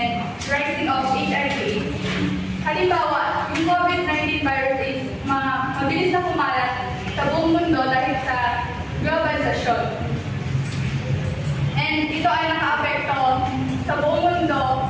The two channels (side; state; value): both; identical; correlation 1.00